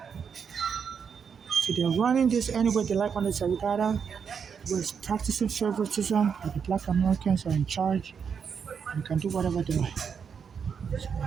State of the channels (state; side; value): quieter; left; 6.7 dB